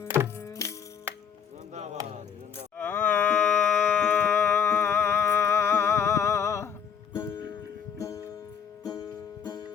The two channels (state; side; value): quieter; right; 7.5 dB